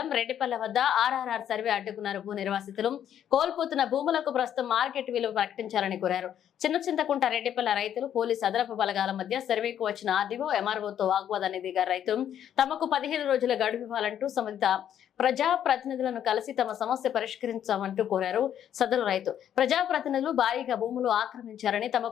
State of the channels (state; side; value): quieter; right; 10.0 dB